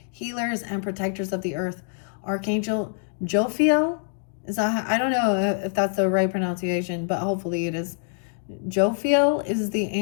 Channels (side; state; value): right; silent; digital silence